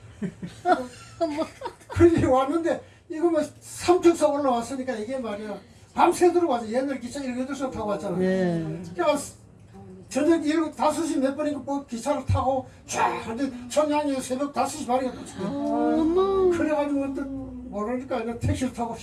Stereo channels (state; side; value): identical; both; correlation 1.00